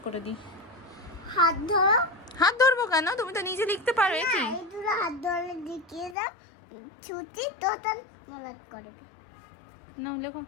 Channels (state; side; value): drops out; right; at 6.2 s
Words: করে দিই। হাত ধরো। হাত ধরবো কেন? তুমি তো নিজে লিখতে পারো। না, কি এই দুটো হাত ধরে দেখিয়ে দাও, ছুটি তো তার মলাট করে দে। নাও লেখো।